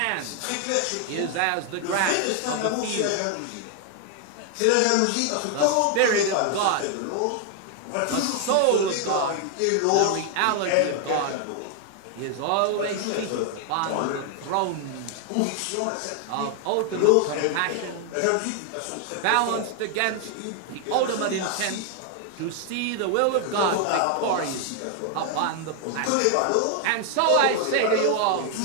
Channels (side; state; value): both; different; correlation 0.00